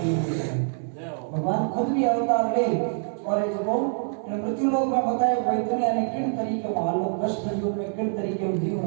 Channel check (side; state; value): left; silent; digital silence